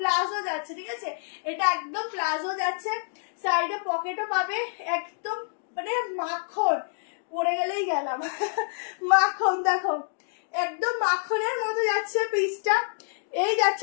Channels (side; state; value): right; silent; digital silence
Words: যাচ্ছে, ঠিক আছে? এটা একদম প্লাজো যাচ্ছে, সাইডে পকেটও পাবে, একদম মানে মাখন, পড়ে গেলেই গেলাম মাখন। দেখো একদম মাখনের মতো যাচ্ছে পিসটা। এই